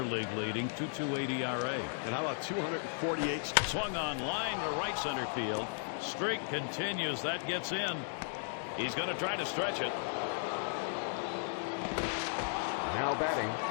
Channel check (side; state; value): right; silent; digital silence